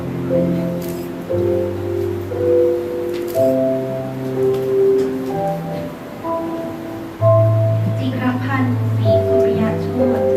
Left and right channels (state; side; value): identical; both; correlation 1.00